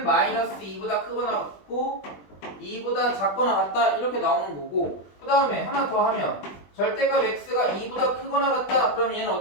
마이너스 2보다 크거나 같고 2보다 작거나 같다 이렇게 나오는 거고, 그 다음에 하나 더 하면 절대값 x가 2보다 크거나 같다. 그러면 얘는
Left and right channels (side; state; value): right; late; 20 ms